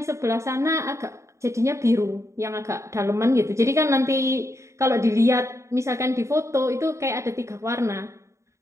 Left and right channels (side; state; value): left; late; 0.14 ms